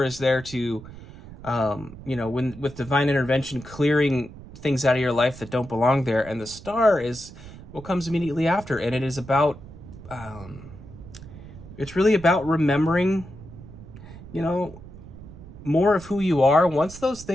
is there to, when with divine intervention, clearing things out of your life that don't belong there, and the star is what comes immediately after, and it is about, it's really about remembering, more of who you are. Once those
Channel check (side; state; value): right; noise; rumble, 16 dB below the sound